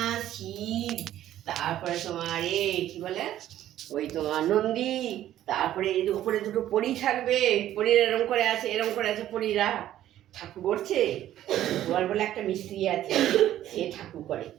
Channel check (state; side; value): quieter; left; 12.6 dB